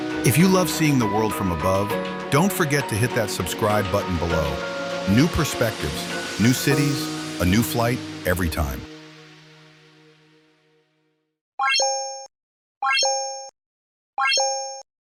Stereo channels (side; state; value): both; identical; correlation 1.00